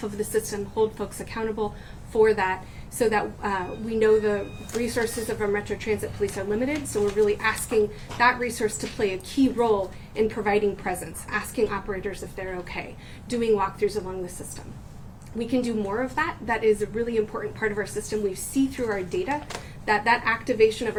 of the system, hold folks accountable for that, so that we know the resources of our Metro Transit Police are limited. So we're really asking that resource to play a key role in providing presence, asking operators if they're okay, doing walkthroughs along the system. We can do more of that. That is a really important part of our system. We see through our data that activation of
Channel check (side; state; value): both; identical; correlation 1.00